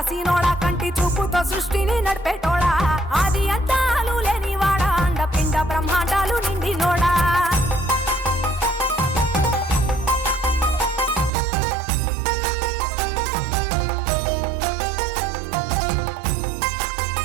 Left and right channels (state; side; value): drops out; left; at 11.3 s